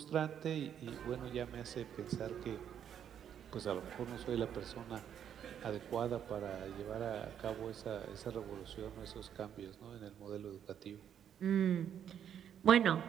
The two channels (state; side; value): quieter; left; 9.1 dB